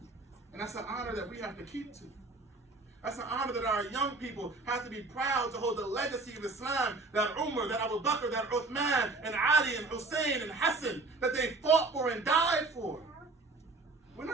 And that's an honor that we have to keep to. That's an honor that our young people have to be proud to hold the legacy of Islam, that Umar, that Abu Bakr, that Uthman, and Ali, and Hussein, and Hassan, that they fought for and died for. We're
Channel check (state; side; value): quieter; left; 3.5 dB